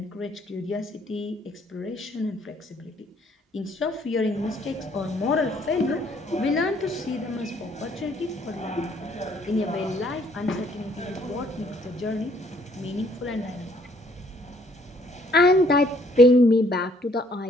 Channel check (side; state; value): both; normal; correlation 0.64